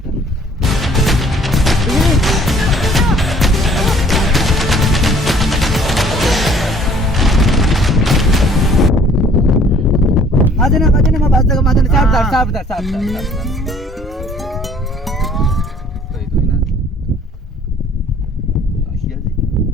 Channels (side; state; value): both; normal; correlation 0.56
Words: आजना मैं बात लगा मादन साहब